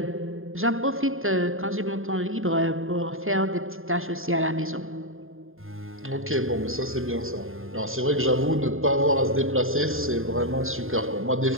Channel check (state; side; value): late; left; 0.60 ms